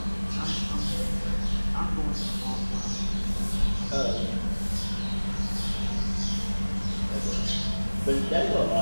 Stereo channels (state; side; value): inverted; both; correlation -1.00